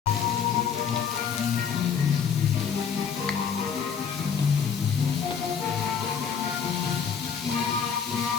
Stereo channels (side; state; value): right; quieter; 7.0 dB